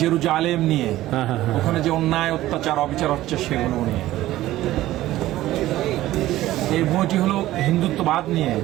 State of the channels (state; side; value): quieter; left; 15.3 dB